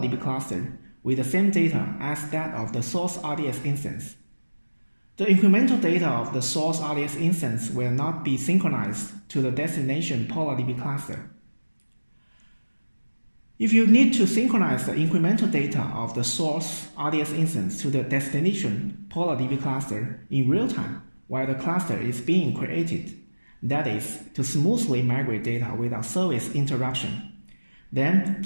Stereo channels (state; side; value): inverted; both; correlation -1.00